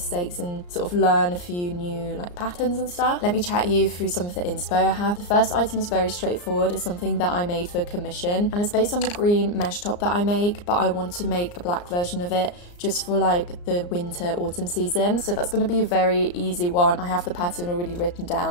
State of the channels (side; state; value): right; late; 34 ms